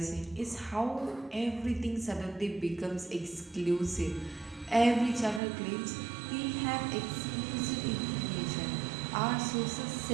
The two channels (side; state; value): left; drops out; at 5.4 s